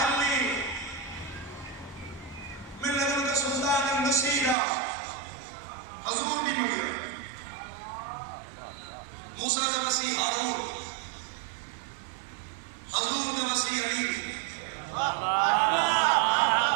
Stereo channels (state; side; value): drops out; left; at 4.5 s